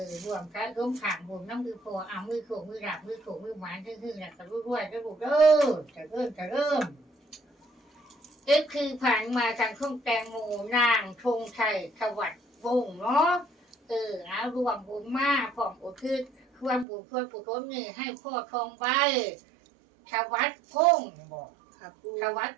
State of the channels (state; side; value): drops out; left; at 16.9 s